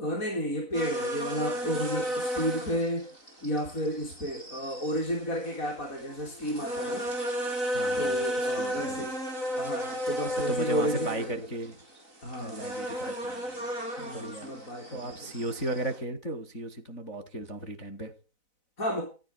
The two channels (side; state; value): right; late; 4.0 ms